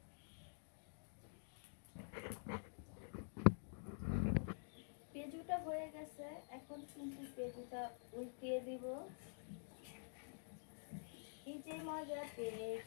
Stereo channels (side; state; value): right; silent; digital silence